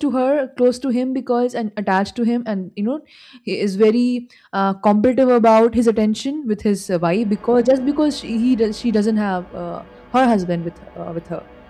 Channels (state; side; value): identical; both; correlation 1.00